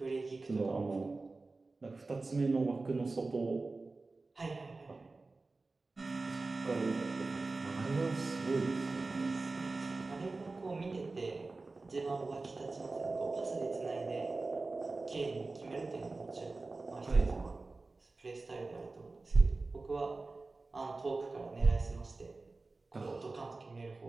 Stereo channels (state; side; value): quieter; left; 3.5 dB